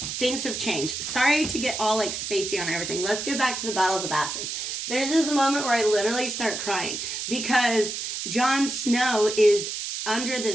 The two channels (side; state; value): right; noise; hiss, 5 dB below the sound